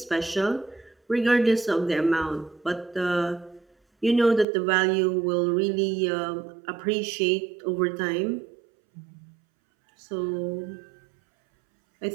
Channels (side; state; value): left; drops out; at 4.5 s